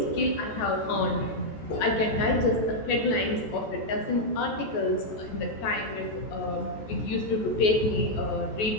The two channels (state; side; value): late; right; 14 ms